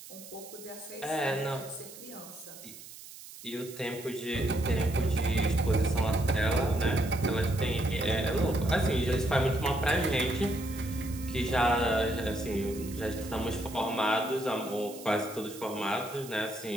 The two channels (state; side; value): noise; right; hiss, 16 dB below the sound